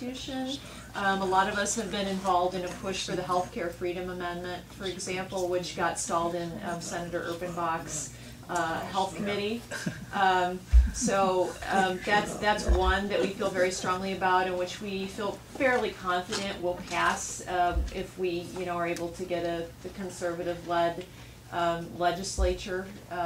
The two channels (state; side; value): identical; both; correlation 1.00